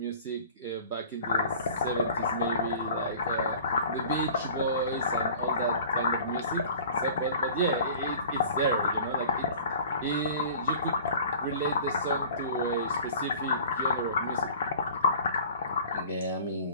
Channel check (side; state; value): both; inverted; correlation -0.44